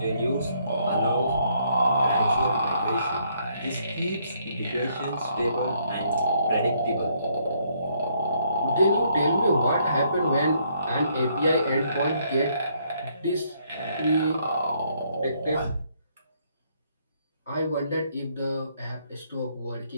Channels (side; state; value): both; inverted; correlation -0.70